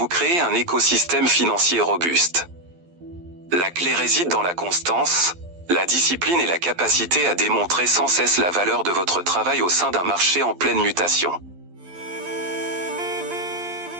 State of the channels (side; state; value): left; late; 12 ms